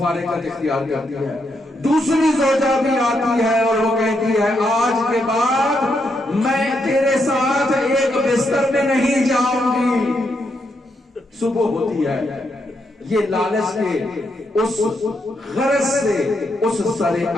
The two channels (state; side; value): normal; both; correlation 0.80